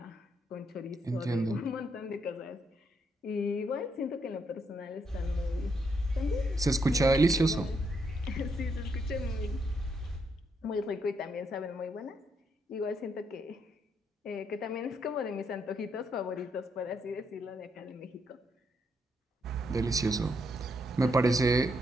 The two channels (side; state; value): both; normal; correlation 0.77